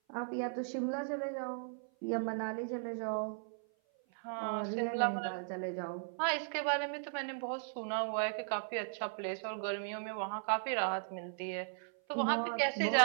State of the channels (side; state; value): left; silent; 53 dB below the other